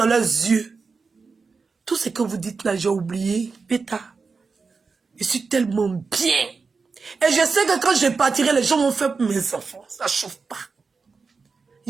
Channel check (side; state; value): left; quieter; 4.7 dB